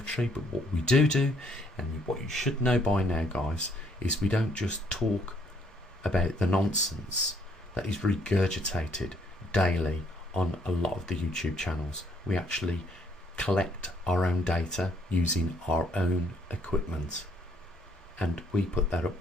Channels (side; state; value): both; normal; correlation 0.66